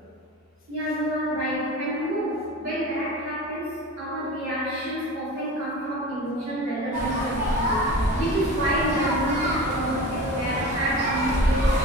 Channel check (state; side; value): normal; both; correlation 0.33